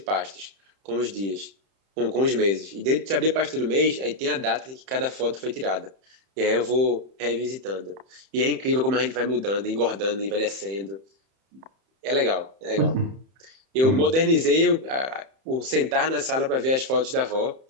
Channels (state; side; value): late; left; 31 ms